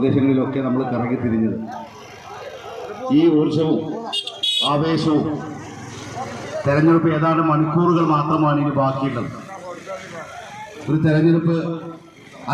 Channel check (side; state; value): both; identical; correlation 1.00